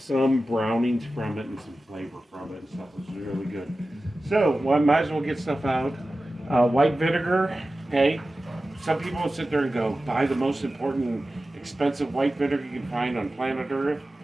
brownings from it and some flavor from it and stuff, which is really good. So well, I might as well get stuff out. White vinegar. Okay. Some people will sit there and go, buy the most important, expensive white vinegar you can find on planet Earth.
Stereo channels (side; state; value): both; normal; correlation 0.95